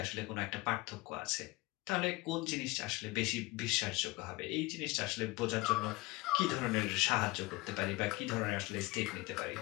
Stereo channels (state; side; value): quieter; right; 21.9 dB